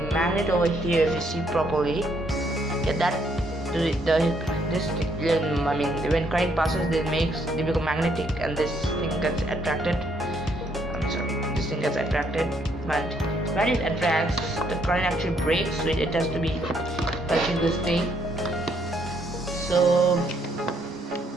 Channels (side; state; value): both; normal; correlation 0.71